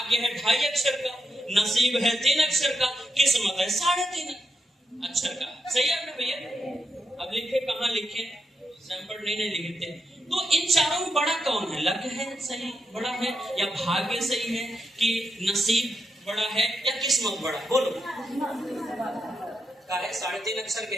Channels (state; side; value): normal; both; correlation 0.84